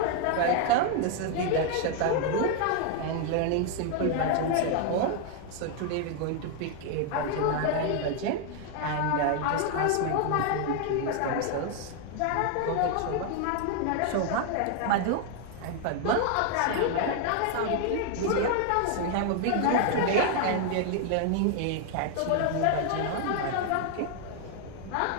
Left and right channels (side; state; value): both; different; correlation 0.00